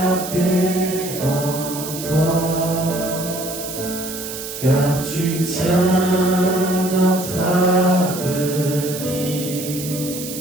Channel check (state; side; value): noise; right; hiss, 9 dB below the sound